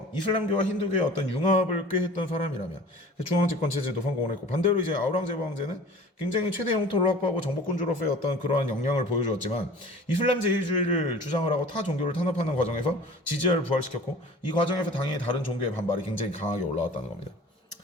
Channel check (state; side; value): normal; both; correlation 0.44